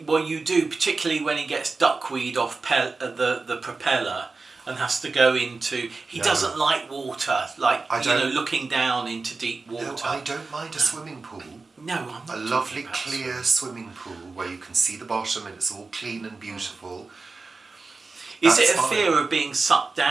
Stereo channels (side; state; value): left; quieter; 4.0 dB